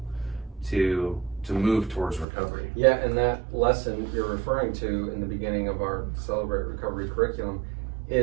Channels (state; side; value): drops out; left; at 2.2 s